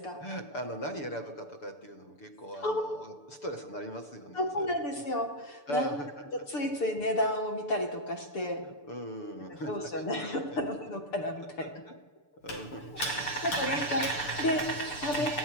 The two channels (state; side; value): late; right; 6.9 ms